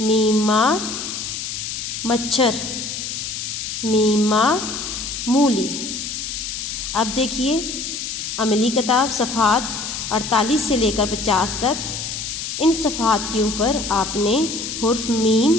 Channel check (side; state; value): left; noise; hiss, 5 dB below the sound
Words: मीम माँ मच्छर, मीम माँ मूली। अब देखिए अमली किताब सफ़हात 48 से लेकर 50 तक, इन सफ़हात के ऊपर आपने हुर्फ मीम